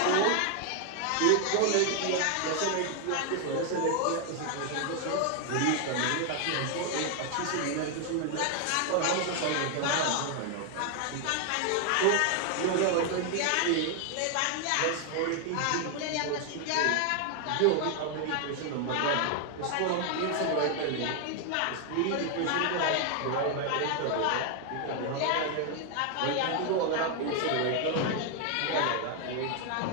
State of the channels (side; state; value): both; different; correlation 0.00